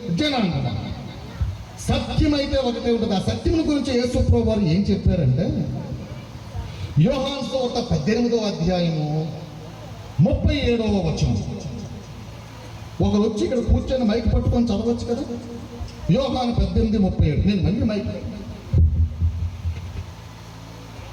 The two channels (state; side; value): identical; both; correlation 1.00